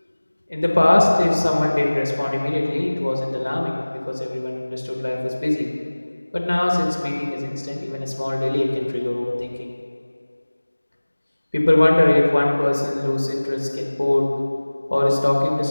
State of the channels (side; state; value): both; inverted; correlation -1.00